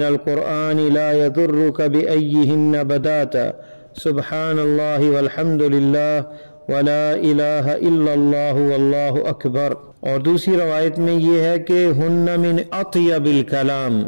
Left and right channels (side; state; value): both; inverted; correlation -1.00